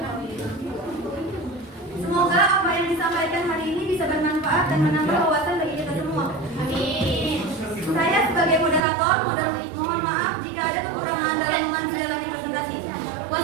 Semoga apa yang disampaikan hari ini bisa bermanfaat dan menambah wawasan bagi kita semua. Amin. Saya sebagai moderator mohon maaf jika ada kekurangan dalam menjalani presentasi.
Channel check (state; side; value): drops out; left; at 8.8 s